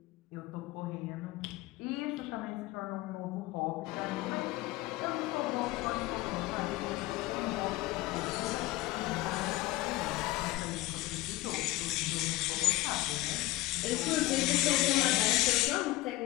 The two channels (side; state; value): right; quieter; 18.3 dB